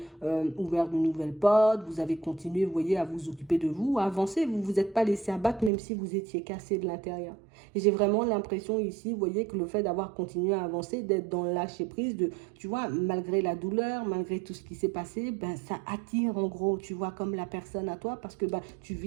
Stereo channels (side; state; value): left; drops out; at 5.7 s